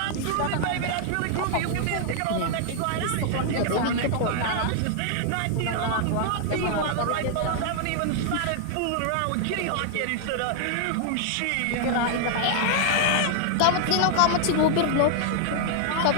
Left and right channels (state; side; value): different; both; correlation 0.00